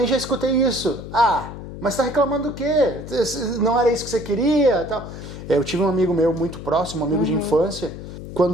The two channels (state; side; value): noise; left; hum, 11 dB below the sound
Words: já escutei isso. Mas tá reclamando do quê? Não era isso que você queria? Tal. Eu tive um amigo meu muito próximo, um amigo de infância,